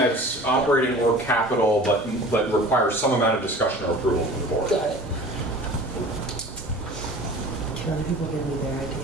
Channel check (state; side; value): normal; both; correlation 0.42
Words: operating or capital, but requires some amount of discussion or approval from the board. Got it. Can other people give me their